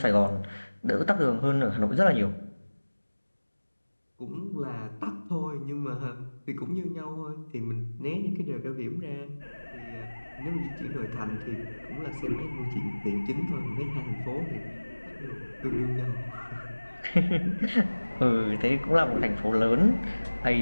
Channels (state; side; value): inverted; both; correlation -1.00